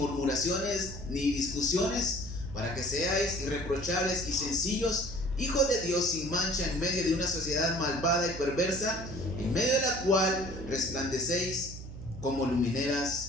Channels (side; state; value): right; noise; hum, 11 dB below the sound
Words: ni discusiones, para que seáis irreprochables y sencillos, hijos de Dios sin mancha en medio de una sociedad malvada y perversa, en medio de la cual resplandecéis como